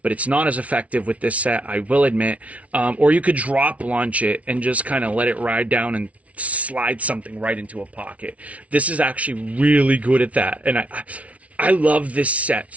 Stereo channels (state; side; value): late; left; 0.066 ms